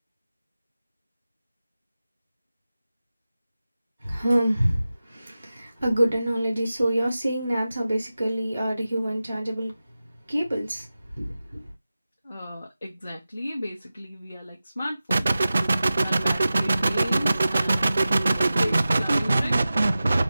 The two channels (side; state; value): both; inverted; correlation -0.95